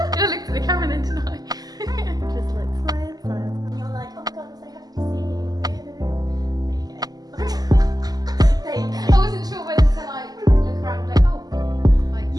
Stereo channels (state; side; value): late; left; 0.19 ms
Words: looked at the camera then, didn't I? Just like smile, smile. And you're like, oh my god, I'm so happy to see you. There you go. There you go. I wasn't sure whether to like look around and be like, oh, like